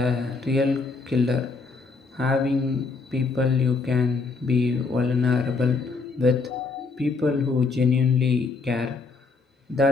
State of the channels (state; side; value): quieter; right; 4.3 dB